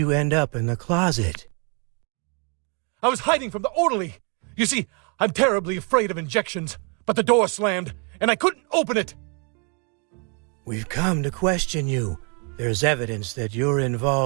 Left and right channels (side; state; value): left; quieter; 36.0 dB